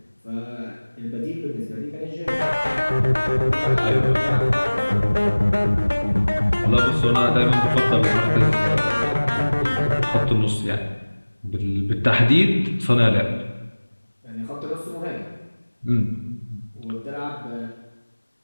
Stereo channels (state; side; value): inverted; both; correlation -1.00